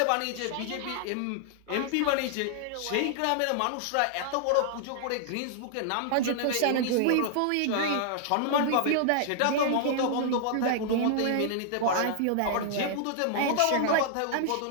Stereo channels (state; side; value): different; both; correlation -0.01